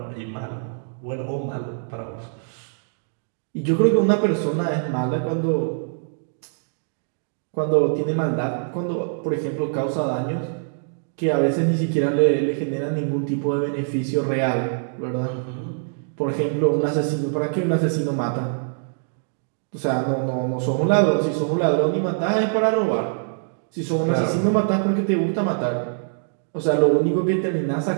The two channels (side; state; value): left; silent; digital silence